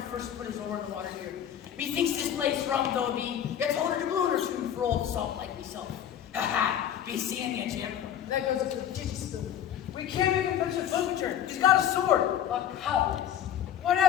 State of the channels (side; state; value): right; quieter; 10.2 dB